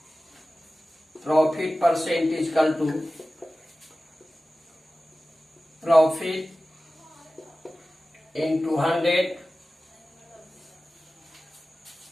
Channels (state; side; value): normal; both; correlation 0.96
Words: Profit percent equal to profit into 100